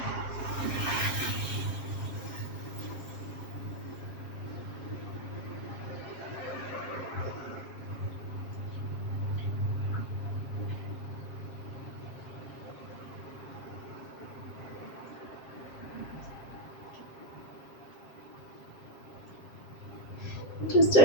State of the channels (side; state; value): right; late; 7.5 ms